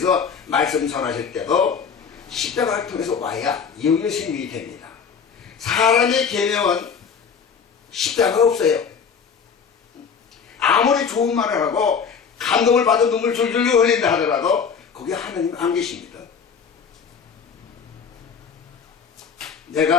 말씀 전하실 때도 십자가를 통해서 와야 영의 생명이 됩니다. 사람의 계명은 십자가가 없어요. 아무리 좋은 말을 하고 감동을 받아 눈물 줄줄 흘린다 하더라도 거기 하나님 안 계십니다.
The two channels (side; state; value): right; quieter; 6.4 dB